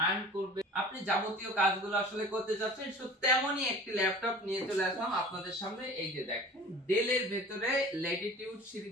আর্ন করবেন, আপনি যাবতীয় কাজগুলো আসলে করতে চাচ্ছেন, সো তেমনই একটি ল্যাপটপ নিয়ে চলে আসলাম আপনাদের সামনে। এই যে দেখেন, ডেলের ভেতরে ল্যাটিটিউড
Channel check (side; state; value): both; normal; correlation 0.42